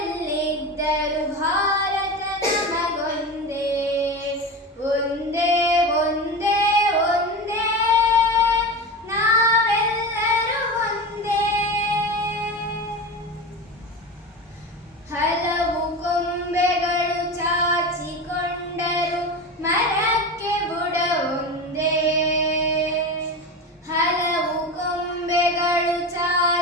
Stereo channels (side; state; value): both; normal; correlation 0.25